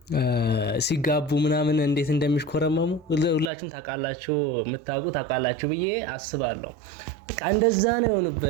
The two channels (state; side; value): drops out; left; at 3.5 s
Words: ሲጋቡ ምናምን እንዴት እንደሚሽኮረመሙ ሁላችሁም ታውቃላችሁ፣ ታውቃላችሁ ብዬ አስባለሁ። በቃ እንደዛ ነው